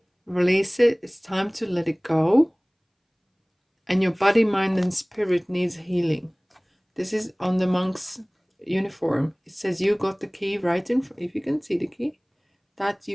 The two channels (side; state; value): both; identical; correlation 1.00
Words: release it, it's time to let it go, and your body, mind, and spirit needs healing. This is on the monk's uniform. It says you got the key right in front. If you can see the key, that